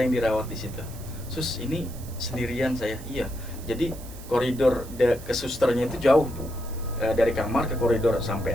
dirawat di situ. Sus, ini sendirian saya. Iya. Jadi koridor ke susternya itu jauh, Bu. Dari kamar ke koridor sampai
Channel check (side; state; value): right; noise; hiss, 18 dB below the sound